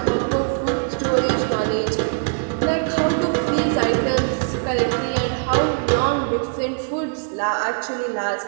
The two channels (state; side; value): silent; left; digital silence